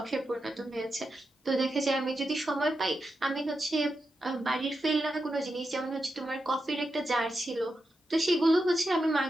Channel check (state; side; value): normal; both; correlation 0.88